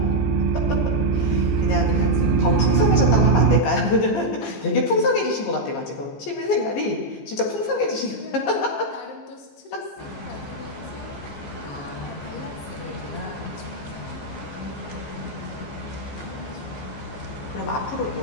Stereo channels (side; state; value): right; late; 15 ms